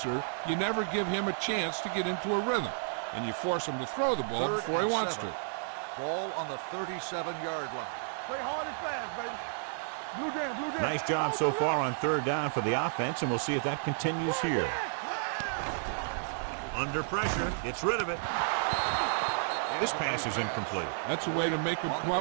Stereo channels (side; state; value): left; silent; digital silence